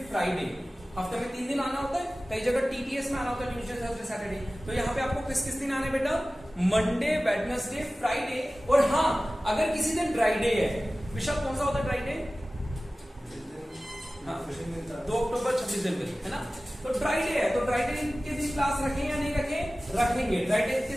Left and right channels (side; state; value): both; normal; correlation 0.97